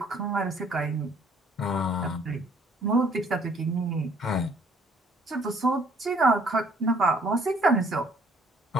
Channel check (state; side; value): normal; both; correlation 0.61